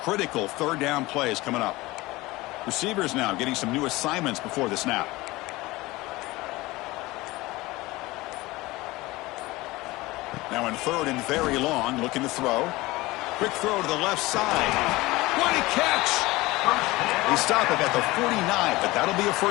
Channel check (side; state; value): right; quieter; 20.3 dB